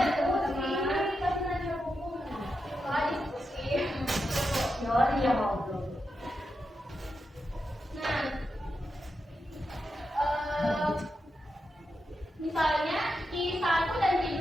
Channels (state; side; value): normal; both; correlation 0.87